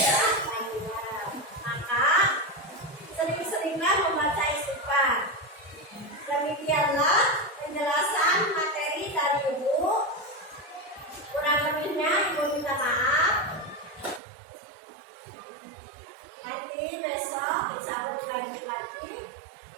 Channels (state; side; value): drops out; left; at 14.2 s